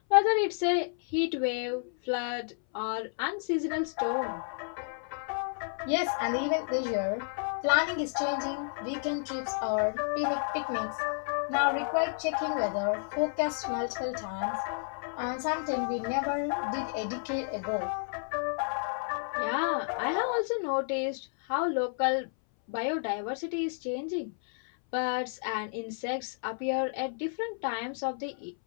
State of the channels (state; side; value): silent; right; 57 dB below the other